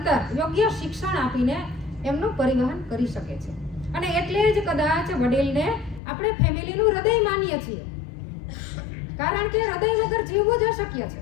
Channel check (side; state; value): right; drops out; at 6.0 s